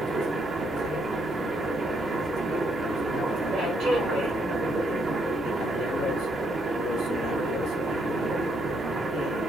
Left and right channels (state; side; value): normal; both; correlation 0.74